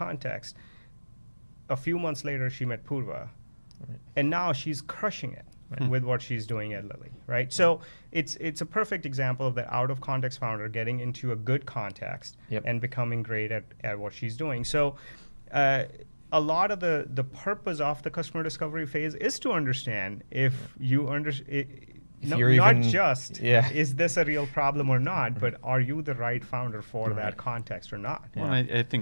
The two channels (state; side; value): inverted; both; correlation -1.00